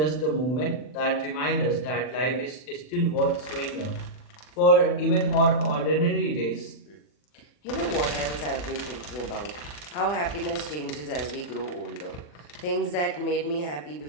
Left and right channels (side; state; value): right; late; 40 ms